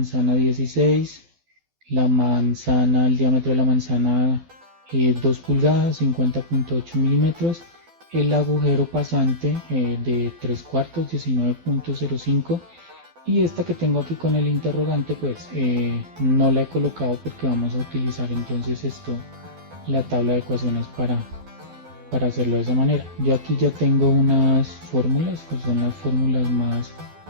16, la manzana, el diámetro de la manzana 2 pulgadas, 50.8 milímetros, el agujero pasante de 3 cuartos, 19.05, y esta que tengo aquí con el interrogante pues no la he colocado porque vamos a utilizar entonces esto, la tabla de ecuaciones para hacerlo de esa manera. Yo aquí ya tengo unas fórmulas que son las fórmulas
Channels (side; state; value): left; late; 12 ms